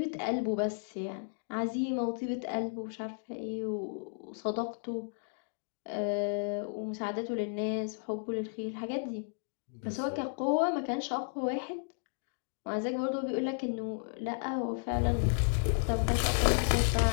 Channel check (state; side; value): silent; right; digital silence